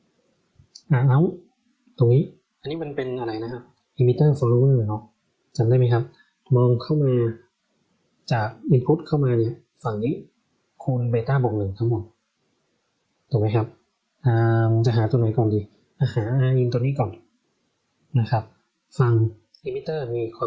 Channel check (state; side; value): identical; both; correlation 1.00